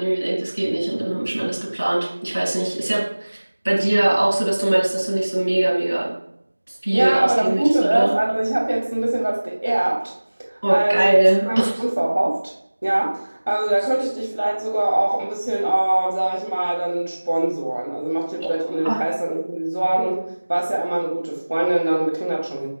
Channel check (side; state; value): both; inverted; correlation -1.00